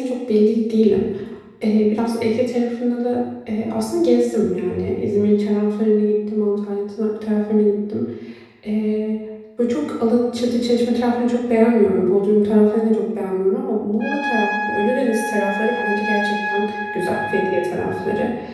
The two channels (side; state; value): both; identical; correlation 1.00